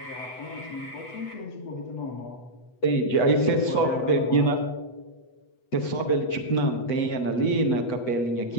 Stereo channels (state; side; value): late; right; 8.0 ms